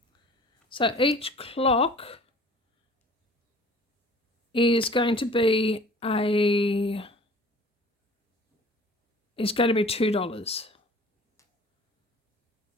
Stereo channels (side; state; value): both; normal; correlation 0.48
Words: So each clock is going to be $2.